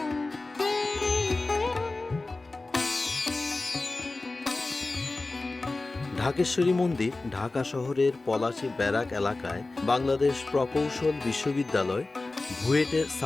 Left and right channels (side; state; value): right; quieter; 3.3 dB